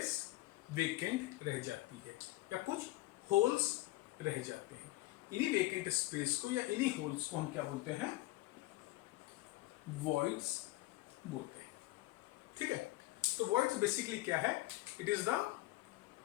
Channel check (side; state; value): right; quieter; 18.6 dB